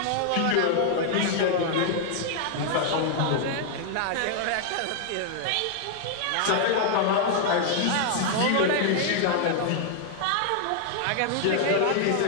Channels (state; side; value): different; both; correlation 0.00